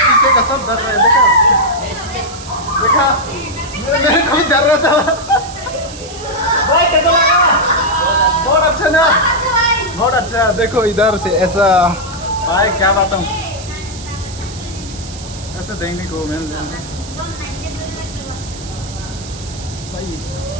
पीछे का सब डर रहा है। देखा मेरे को भी डर रहा था। भाई कैसा लगा? बहुत अच्छा ना, बहुत अच्छा। देखो इधर से ऐसा, भाई क्या बताऊँ, ऐसे देखने को मिल जाएगा भाई।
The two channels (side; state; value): right; noise; hiss, 15 dB below the sound